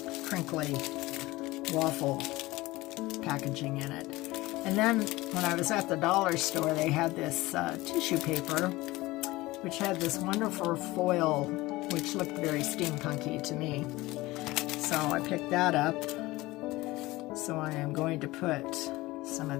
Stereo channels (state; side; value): quieter; right; 19.7 dB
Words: crinkly waffle packaging in it. And then when I was at the dollar store, they had this tissue paper, which had this wonderful foil, which looked very steampunky to me. So I picked that up. So I am going to put some